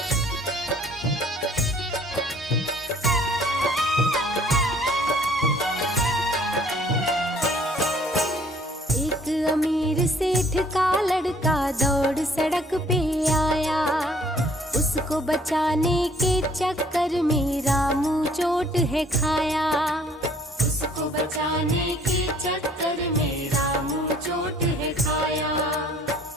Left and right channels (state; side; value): normal; both; correlation 0.58